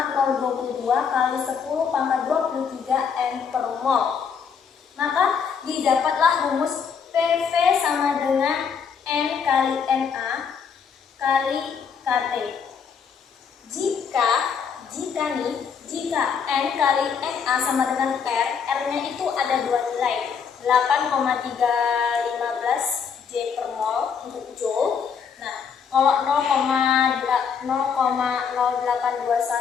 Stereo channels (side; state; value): right; quieter; 6.6 dB